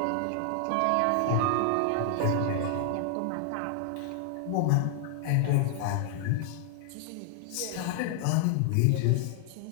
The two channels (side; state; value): both; different; correlation 0.00